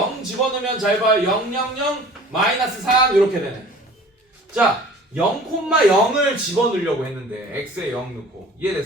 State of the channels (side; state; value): both; normal; correlation 0.46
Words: 집어넣으면 잘 봐요. 0, 0, 0, 마이너스 3 이렇게 되네. 자, 0,0을 집어넣으려고 했는데 x에 0 넣고.